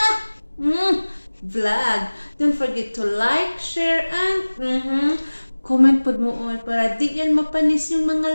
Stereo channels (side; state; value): both; inverted; correlation -1.00